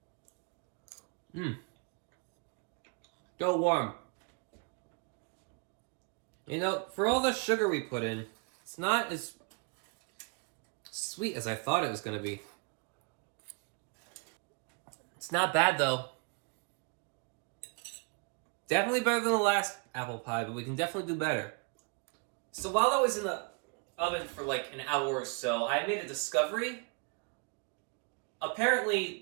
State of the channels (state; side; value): quieter; left; 33.8 dB